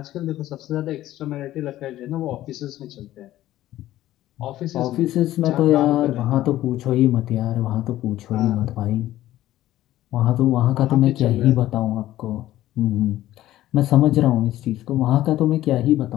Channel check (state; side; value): quieter; right; 14.4 dB